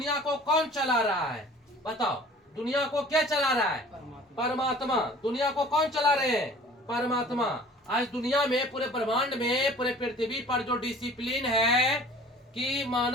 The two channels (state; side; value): normal; both; correlation 0.47